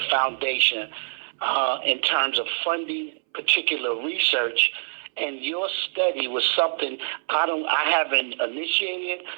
foundation in terms of funding particular research, and your study was something I haven't initiated,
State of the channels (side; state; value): left; silent; 62 dB below the other